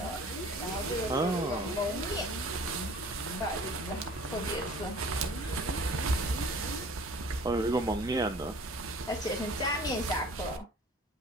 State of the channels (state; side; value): normal; both; correlation 0.48